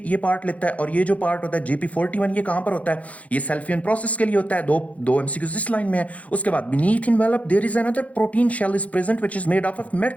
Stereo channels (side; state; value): right; late; 0.067 ms